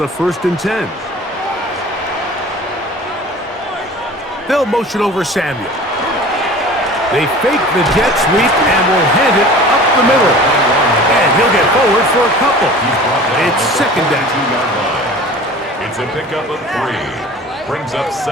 1st and 10. They'll motion over Samuel. They fake the jet sweep and will hand it up the middle. And he'll get forward for a couple. It's 2nd down. It's a pickup of 3. Brings up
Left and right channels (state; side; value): normal; both; correlation 0.42